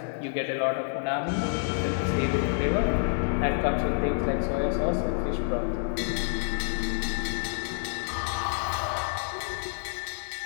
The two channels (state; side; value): silent; right; digital silence